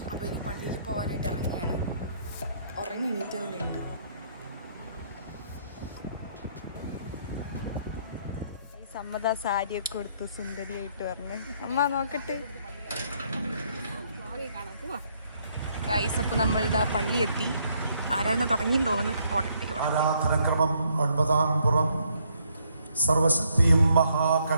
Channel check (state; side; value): inverted; both; correlation -0.70